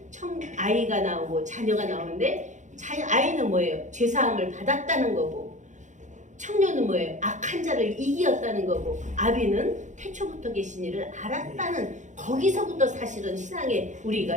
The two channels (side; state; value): left; late; 0.35 ms